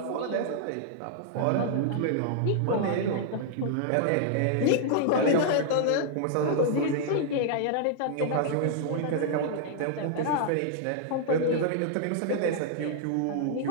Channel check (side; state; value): both; different; correlation -0.01